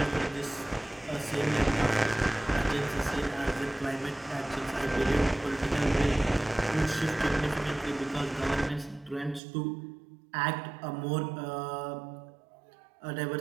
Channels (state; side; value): drops out; left; at 9.4 s